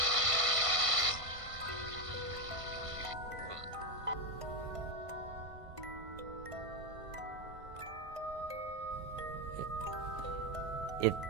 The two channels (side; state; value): left; late; 1.5 ms